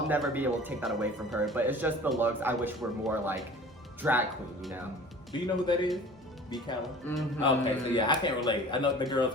never be able to take that away from her. But it's just the looks I wish were more like drag queen, you know? Do you know who that is? B. Calla? Mm-hmm. Okay, so yeah, I can't relate. I know the girls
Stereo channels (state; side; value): normal; both; correlation 0.43